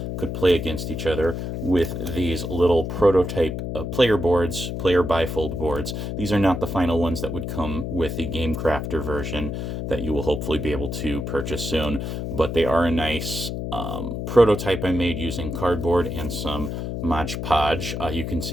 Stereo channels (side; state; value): left; noise; hum, 4 dB below the sound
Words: could play against each other with these little prototype player boards, player bifold boards. These are not the final ones that would come with the Game Crafter version that you will hopefully be able to purchase soon, but they are a nice prototype I made using cardboard and some Mod Podge. You can